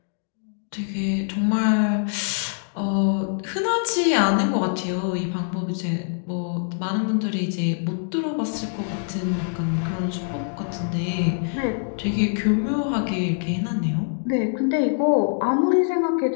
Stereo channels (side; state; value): right; silent; digital silence